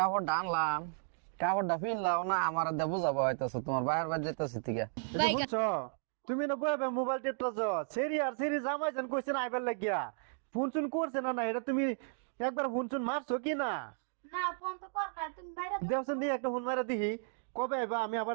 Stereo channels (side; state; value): left; silent; digital silence